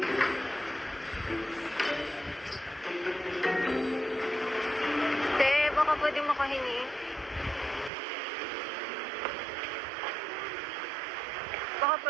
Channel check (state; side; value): drops out; left; at 7.9 s